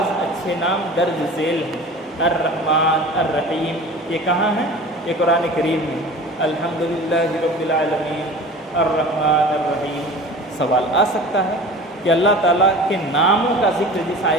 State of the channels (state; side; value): normal; both; correlation 0.39